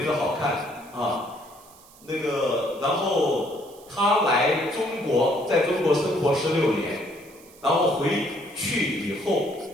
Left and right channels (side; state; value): right; noise; hiss, 24 dB below the sound